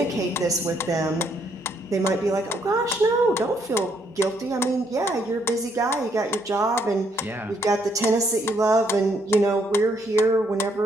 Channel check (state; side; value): normal; both; correlation 0.71